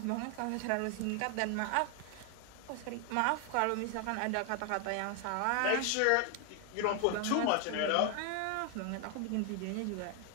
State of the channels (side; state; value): both; different; correlation 0.00